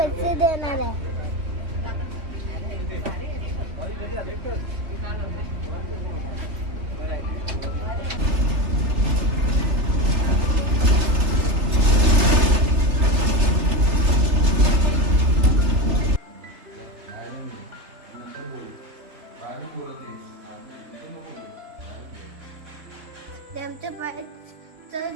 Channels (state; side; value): late; left; 3.3 ms